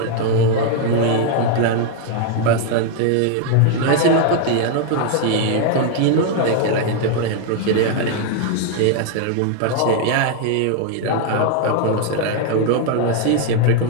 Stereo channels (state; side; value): different; both; correlation 0.00